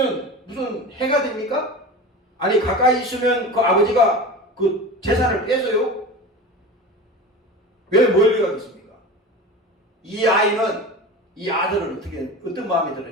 무슨 해가 됩니까? 아니 가까이 있으면 그 아버지가 그 재산을 뺏어요? 왜 멀리 가겠습니까? 이 아이는 이 아들은 어떤 마음이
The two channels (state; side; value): normal; both; correlation 0.31